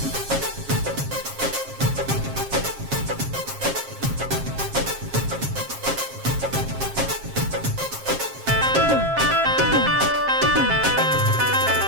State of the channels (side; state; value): left; late; 7.4 ms